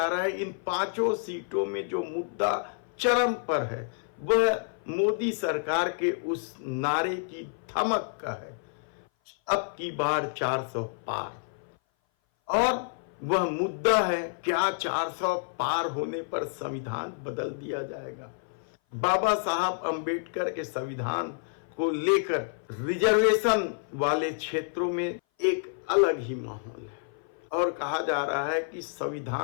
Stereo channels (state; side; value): silent; right; 57 dB below the other